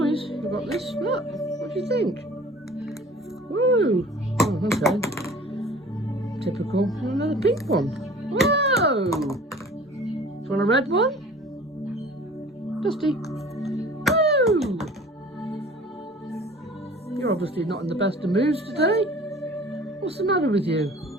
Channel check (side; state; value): both; normal; correlation 0.46